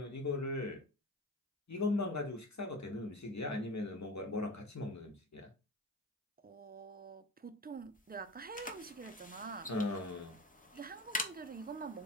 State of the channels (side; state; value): both; normal; correlation 0.31